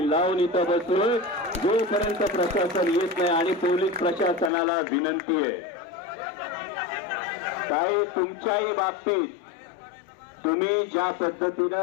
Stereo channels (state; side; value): drops out; right; at 4.5 s